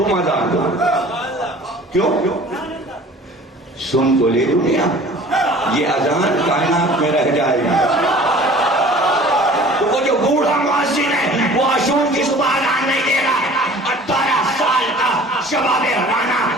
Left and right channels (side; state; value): both; normal; correlation 0.47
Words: اذان دو. کیوں؟ سن تو لے دنیا, یہ اذان کائنات میں رہ جائے گی. تو وہ جو بوڑھا مؤذن ہے وہ عاشور کی صبح اذان نہیں دے رہا ہے, 18 سال کا شباب رانا